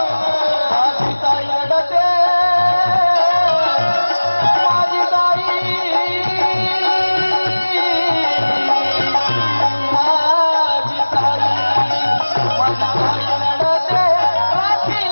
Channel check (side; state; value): both; inverted; correlation -1.00